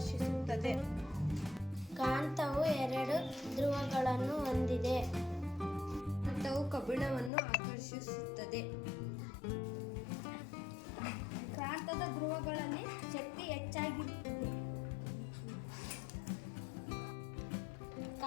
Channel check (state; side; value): drops out; right; at 7.3 s